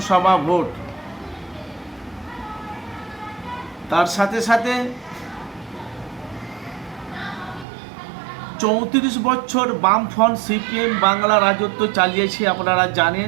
ভোট, তার সাথে সাথে 34 বছর বামফ্রন্ট সিপিএম বাংলা রাজত্ব চালিয়েছে। আপনারা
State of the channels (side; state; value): left; drops out; at 7.7 s